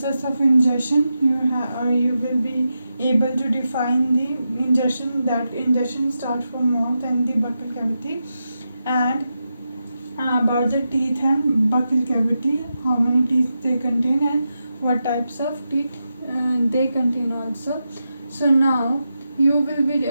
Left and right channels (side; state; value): both; inverted; correlation -0.88